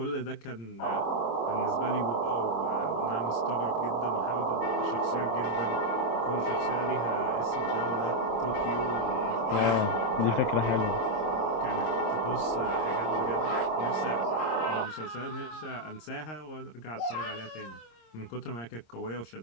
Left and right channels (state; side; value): late; right; 26 ms